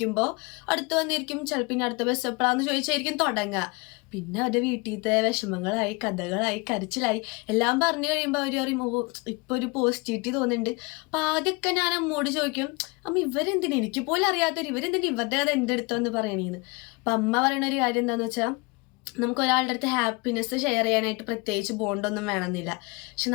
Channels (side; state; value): right; quieter; 27.6 dB